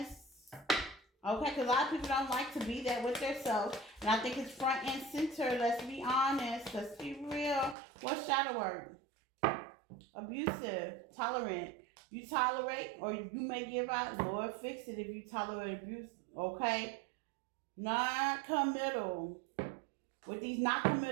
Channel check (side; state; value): left; drops out; at 7.8 s